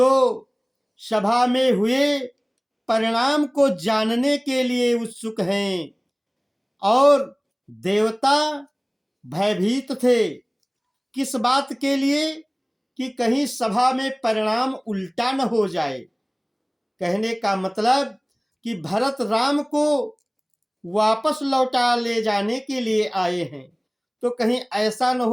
सभा में हुए परिणाम को जानने के लिए उत्सुक हैं। और देवता भयभीत थे, किस बात के लिए कि कहीं सभा में परिणाम उल्टा न हो जाए। कहने का मतलब कि भरत राम को वापस लौटा ले जाने के लिए आए हैं, तो कहीं ऐसा न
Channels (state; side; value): identical; both; correlation 1.00